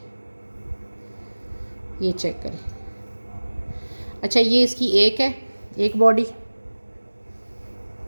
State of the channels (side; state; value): both; inverted; correlation -1.00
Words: ये चेक करें। अच्छा, ये इसकी एक है, एक बॉडी,